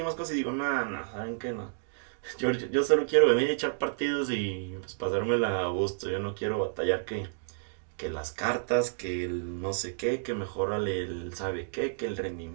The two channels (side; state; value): left; silent; digital silence